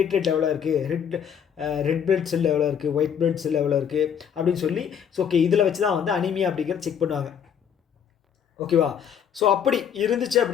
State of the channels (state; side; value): quieter; right; 8.1 dB